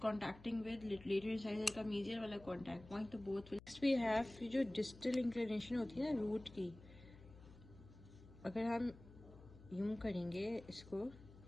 contacting with lateral incisor का मीजियल वाला कॉन्टैक्ट पॉइंट, तो both will. Next we have जो distal inclination होती है ना रूट की, अगर हम यूं करेंगे इसको,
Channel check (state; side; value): noise; left; hum, 19 dB below the sound